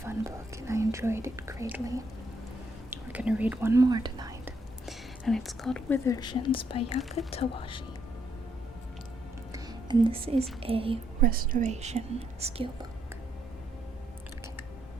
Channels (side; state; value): both; normal; correlation 0.74